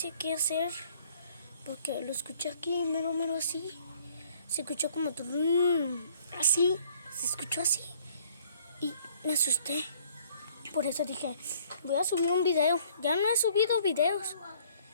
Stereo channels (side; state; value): both; inverted; correlation -0.59